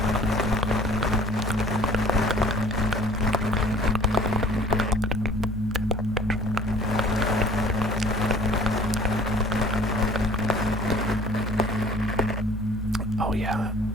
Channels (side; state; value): both; normal; correlation 0.50